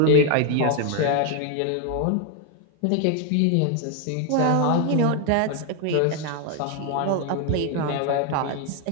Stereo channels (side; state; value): both; different; correlation 0.00